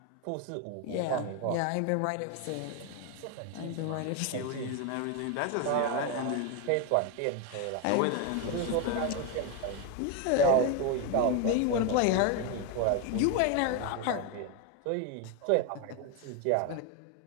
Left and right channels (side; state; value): both; different; correlation 0.01